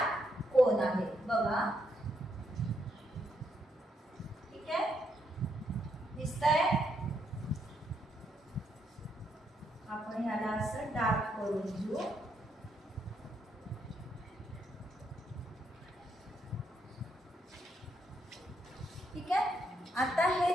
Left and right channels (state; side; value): normal; both; correlation 0.77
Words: कोण आहेत बघा. ठीक आहे. दिसतंय? आपण ह्याला असं डार्क करून घेऊ. ठीक आहे. आता